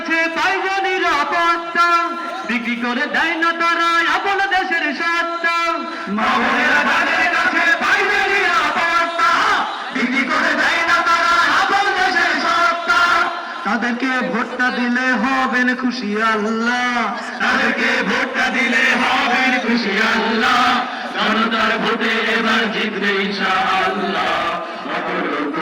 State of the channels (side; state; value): both; identical; correlation 1.00